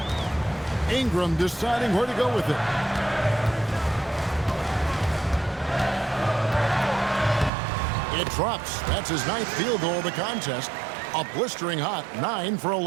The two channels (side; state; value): left; drops out; at 7.5 s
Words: Ingram deciding where to go with it. It drops. That's his 9th field goal of the contest. A blistering hot 9 for